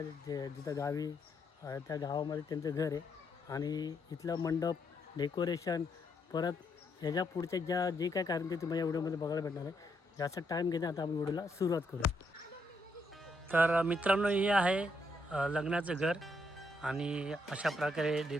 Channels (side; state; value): both; normal; correlation 0.76